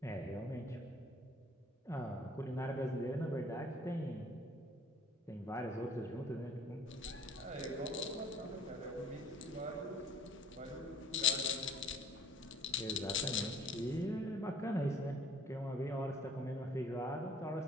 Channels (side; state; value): both; normal; correlation 0.53